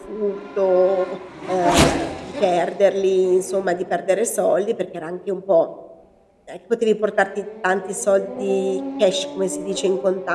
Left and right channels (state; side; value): identical; both; correlation 1.00